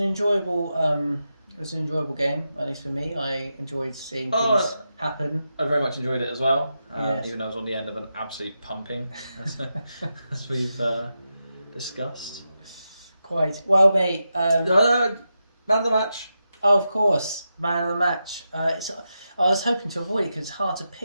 enjoyable game, at least for me. I enjoyed seeing things happen. I very much enjoyed it as well, Yes. even though I was on the end of an absolute pumping, as we've discussed. Quite well, mate. Man of the match. Oh, of course, man of the match. I was hoping to avoid it because it's hard to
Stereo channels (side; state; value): both; inverted; correlation -0.88